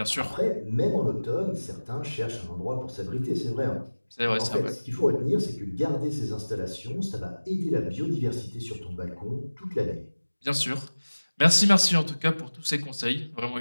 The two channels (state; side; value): inverted; both; correlation -1.00